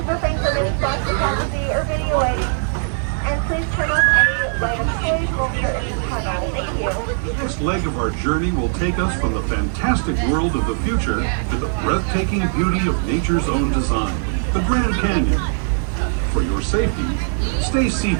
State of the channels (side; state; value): left; silent; 60 dB below the other